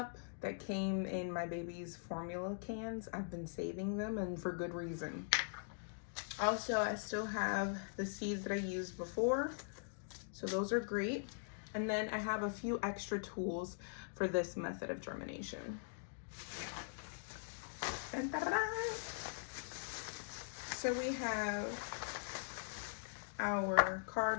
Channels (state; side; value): silent; right; digital silence